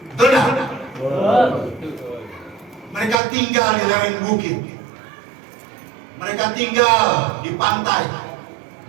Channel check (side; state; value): left; drops out; at 3.2 s